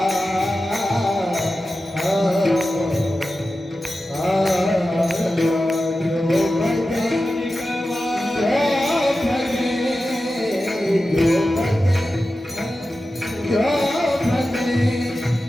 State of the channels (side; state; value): both; normal; correlation 0.93